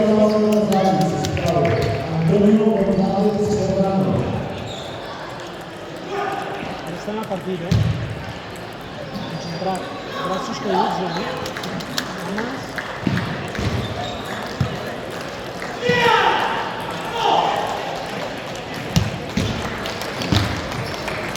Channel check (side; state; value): both; identical; correlation 1.00